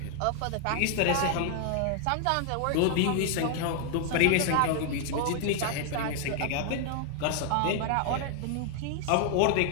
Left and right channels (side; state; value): both; different; correlation 0.00